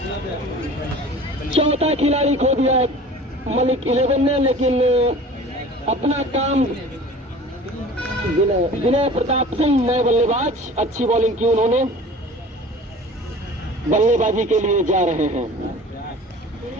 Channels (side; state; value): both; normal; correlation 0.42